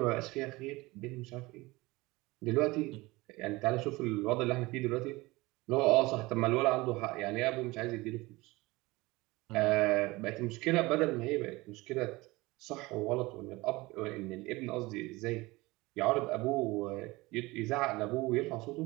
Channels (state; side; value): quieter; left; 21.6 dB